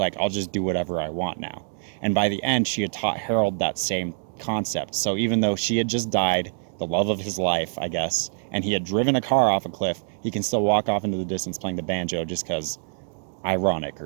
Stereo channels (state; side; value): silent; left; 62 dB below the other